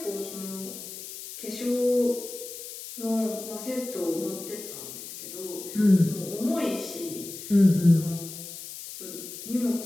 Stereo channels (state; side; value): noise; left; hiss, 11 dB below the sound